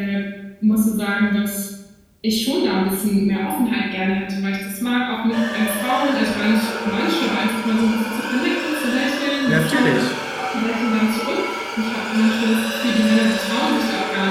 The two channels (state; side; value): identical; both; correlation 1.00